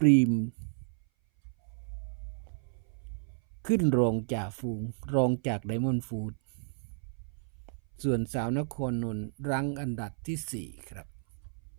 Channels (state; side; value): silent; left; 56 dB below the other